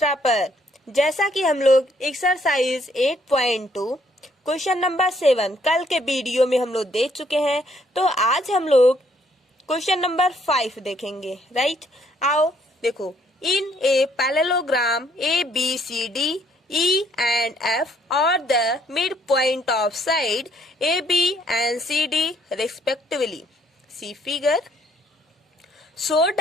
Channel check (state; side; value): normal; both; correlation 0.67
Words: पर। जैसा कि हम लोग एक्सरसाइज 8.2 क्वेश्चन नंबर 7 कल के वीडियो में हम लोग देख चुके हैं, तो आज हम लोग क्वेश्चन नंबर 5 देखेंगे। राइट, आओ देखो। In a parallelogram ABCD E and F are the midpoint of side AB and CD respectively. See figure. So